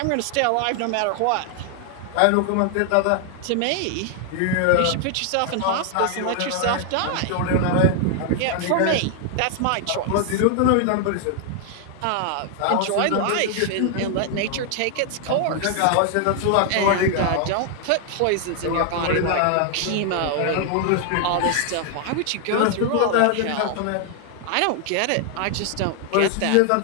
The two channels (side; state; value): both; different; correlation 0.00